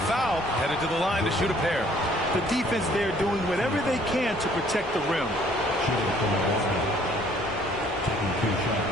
foul, headed to the line to shoot a pair. The defense there doing whatever they can to protect the rim. Shooting from the line. Taking 2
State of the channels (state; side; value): noise; left; rumble, 17 dB below the sound